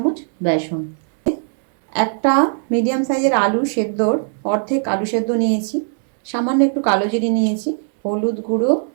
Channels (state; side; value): silent; left; digital silence